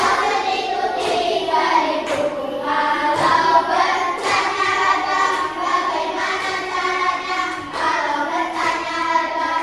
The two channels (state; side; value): noise; left; rumble, 27 dB below the sound